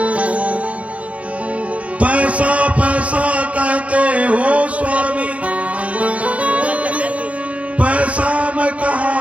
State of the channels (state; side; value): late; left; 0.065 ms